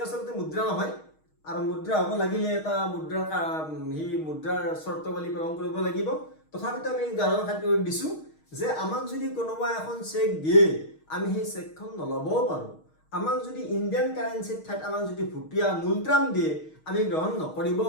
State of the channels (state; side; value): late; right; 6.4 ms